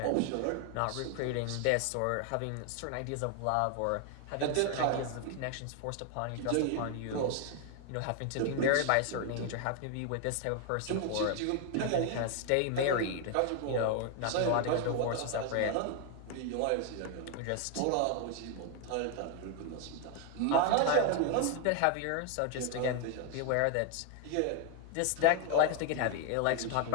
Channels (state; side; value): different; both; correlation 0.01